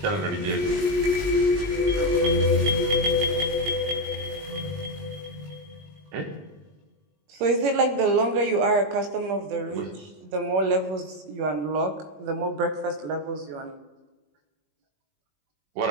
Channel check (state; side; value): late; left; 19 ms